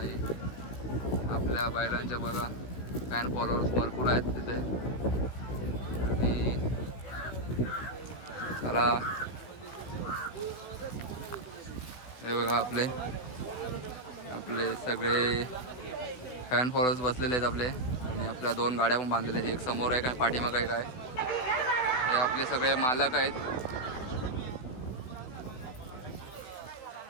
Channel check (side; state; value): right; late; 16 ms